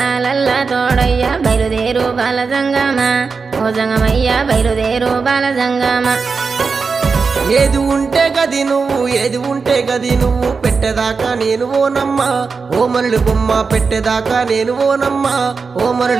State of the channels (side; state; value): left; quieter; 4.9 dB